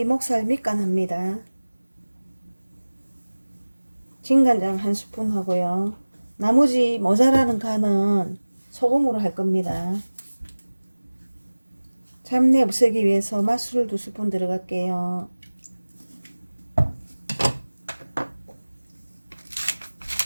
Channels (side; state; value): both; inverted; correlation -1.00